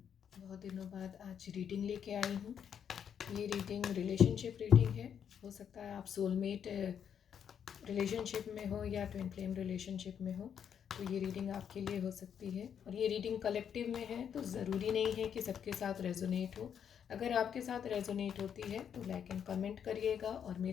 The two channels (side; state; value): right; quieter; 8.2 dB